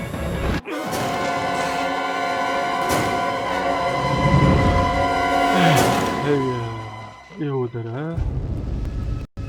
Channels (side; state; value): both; identical; correlation 1.00